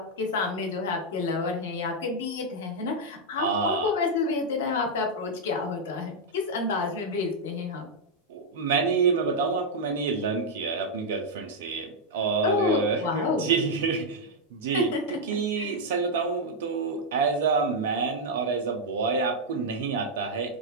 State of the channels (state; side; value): normal; both; correlation -0.03